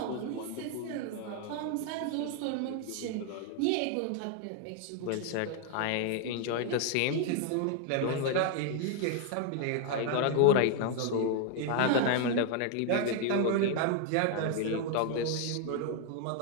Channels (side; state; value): both; different; correlation 0.00